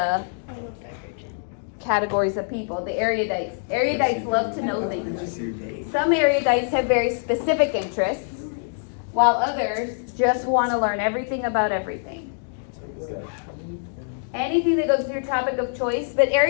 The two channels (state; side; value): silent; right; digital silence